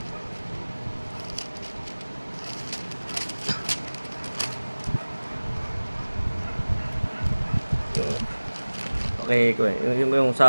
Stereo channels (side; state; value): both; inverted; correlation -1.00